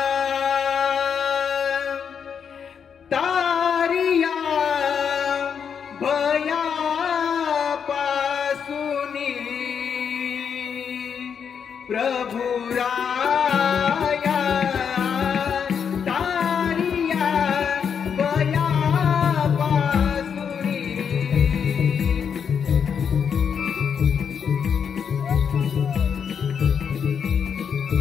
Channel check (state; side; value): quieter; right; 7.1 dB